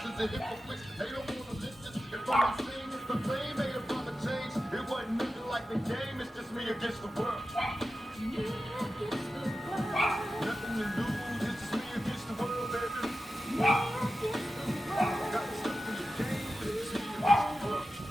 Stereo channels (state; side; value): normal; both; correlation 0.93